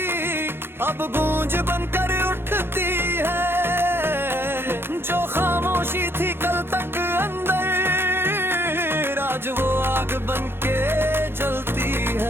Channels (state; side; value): late; left; 0.11 ms